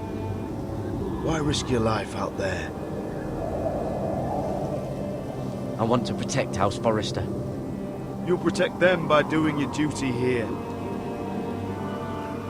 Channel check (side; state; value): both; identical; correlation 1.00